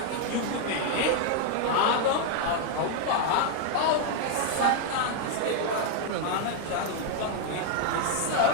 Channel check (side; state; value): both; different; correlation 0.00